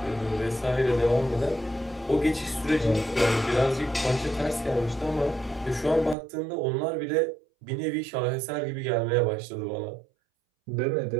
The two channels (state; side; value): drops out; left; at 6.2 s